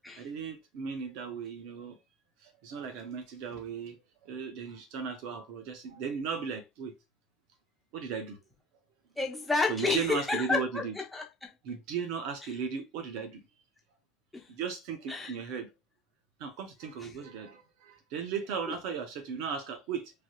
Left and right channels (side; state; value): both; normal; correlation 0.39